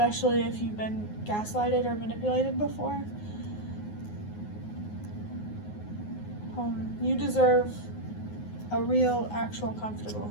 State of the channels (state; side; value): late; right; 9.6 ms